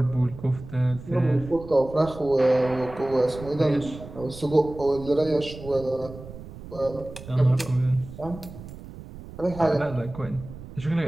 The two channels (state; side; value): noise; right; rumble, 14 dB below the sound